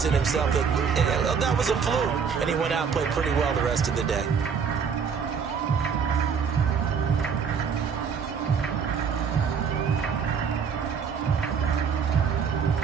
in himself that was a fluke. And he went out and played pretty well the rest of the day.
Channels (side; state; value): left; quieter; 6.5 dB